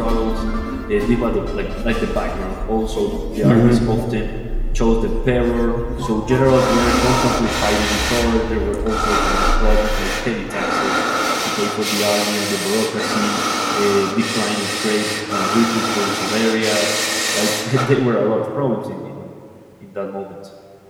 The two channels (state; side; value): identical; both; correlation 1.00